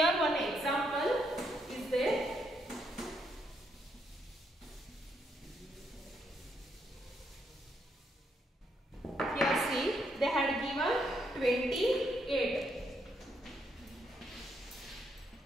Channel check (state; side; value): normal; both; correlation 0.76